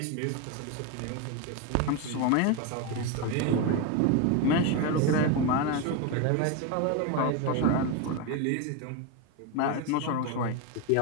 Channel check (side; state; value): both; different; correlation 0.03